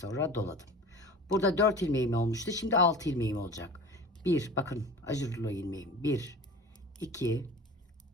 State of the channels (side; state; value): both; normal; correlation 0.38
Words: doladım. Burada 4 ilmeğim olmuştu. Şimdi 6 ilmeğim olacak. Bir, bakın ajurlu ilmeğim. 1, 2,